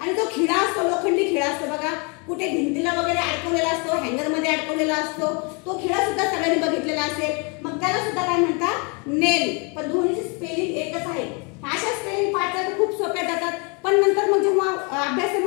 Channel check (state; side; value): quieter; right; 33.1 dB